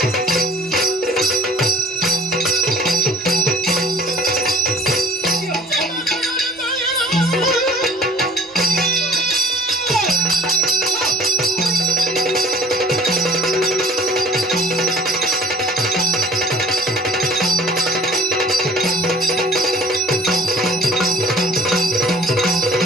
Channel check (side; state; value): both; normal; correlation 0.50